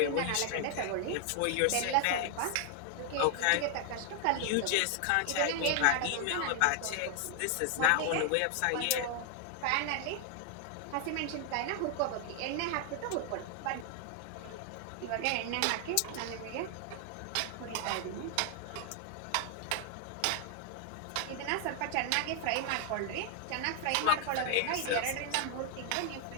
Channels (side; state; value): both; different; correlation 0.00